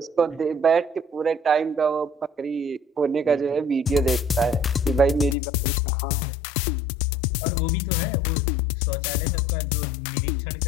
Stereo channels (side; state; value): right; drops out; at 5.4 s